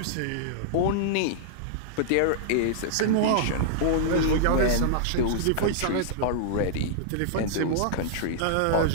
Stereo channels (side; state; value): both; different; correlation -0.01